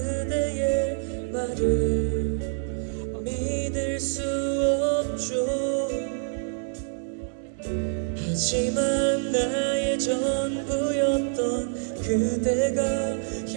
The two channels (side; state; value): left; silent; digital silence